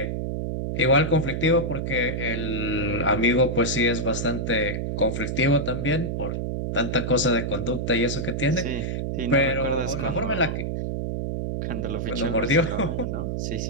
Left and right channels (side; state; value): right; noise; hum, 2 dB below the sound